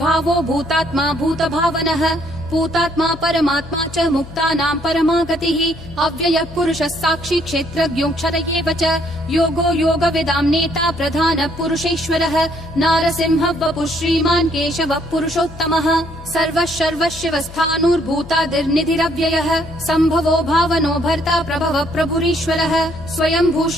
भूतात्मा भूतभावनः भूतात्मा परमात्मा च मुक्तानां परमा गतिः अव्ययः पुरुषः साक्षी क्षेत्रज्ञोऽक्षर एव च योगो योगविदां नेता प्रधानः पुरुषेश्वरः नारसिंहः वपुः श्रीमान् केशवः पुरुषोत्तमः सर्वः सर्वशिवस्थाणुर्भूतादिर्निधिरव्ययः सम्भवो भावनो भर्ता प्रभवः प्रभुरीश्वरः स्वयंभू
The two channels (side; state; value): left; noise; hum, 17 dB below the sound